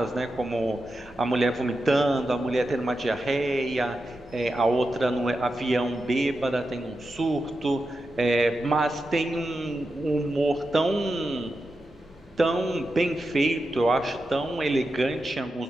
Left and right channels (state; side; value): normal; both; correlation 0.89